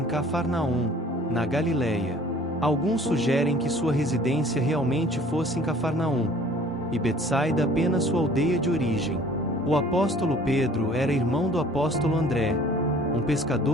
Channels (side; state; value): both; normal; correlation 0.51